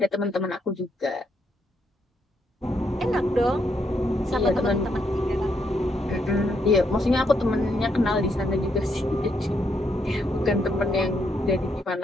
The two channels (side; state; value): both; normal; correlation 0.77